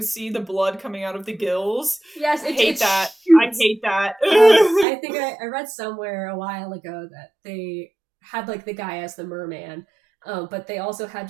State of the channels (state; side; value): drops out; left; at 4.9 s